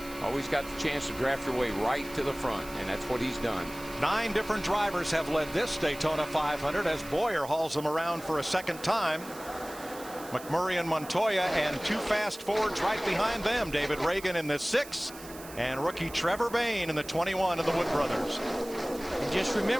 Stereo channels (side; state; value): right; noise; hiss, 16 dB below the sound